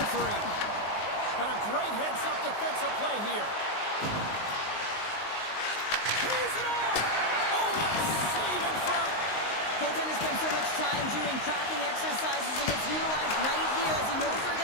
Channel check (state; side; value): late; right; 19 ms